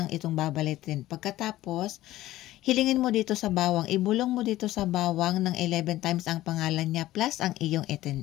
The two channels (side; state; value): right; quieter; 15.5 dB